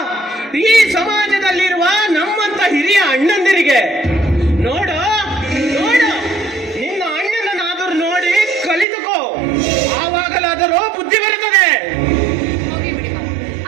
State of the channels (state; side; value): drops out; left; at 8.8 s